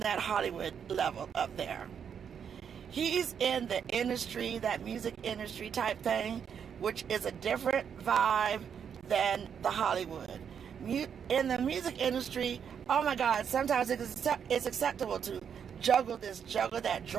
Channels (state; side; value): quieter; left; 7.6 dB